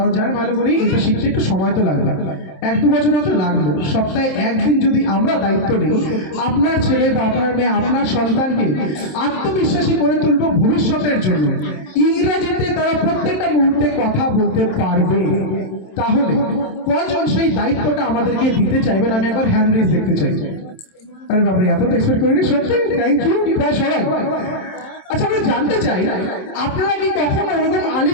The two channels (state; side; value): late; right; 27 ms